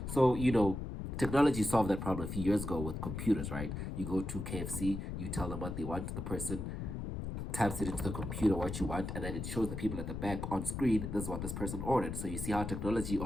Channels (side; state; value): left; noise; rumble, 5 dB below the sound